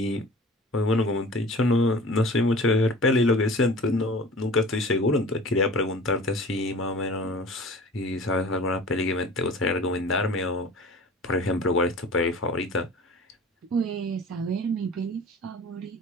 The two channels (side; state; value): both; normal; correlation 0.41